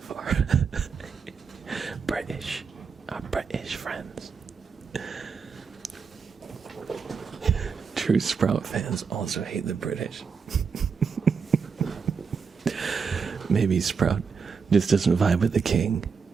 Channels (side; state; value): left; quieter; 5.7 dB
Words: our British friends. True Sprout fans also hate the British. Maybe Sprout just doesn't vibe with the king